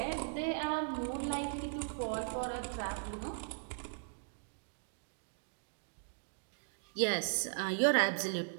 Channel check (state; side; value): silent; left; digital silence